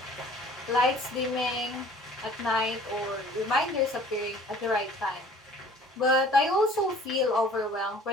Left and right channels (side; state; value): both; normal; correlation 0.51